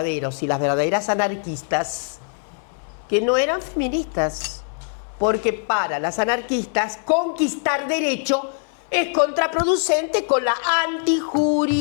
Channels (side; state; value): right; silent; digital silence